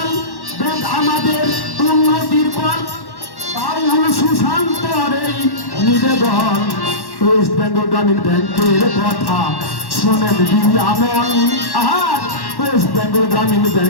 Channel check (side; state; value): right; late; 1.1 ms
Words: ব্যাংক আমাদের উন্নতির ফল। বাউল সুশান্তর এই নিবেদন। ওয়েস্ট বেঙ্গল গ্রামীণ ব্যাংকের কথা শোনেন দিয়ামন। আর ওয়েস্ট বেঙ্গল গ্রামীণ